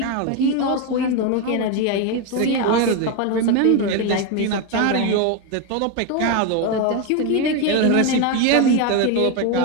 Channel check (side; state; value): both; different; correlation 0.02